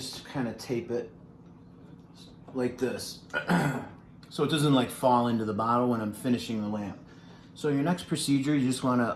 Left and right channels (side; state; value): both; identical; correlation 1.00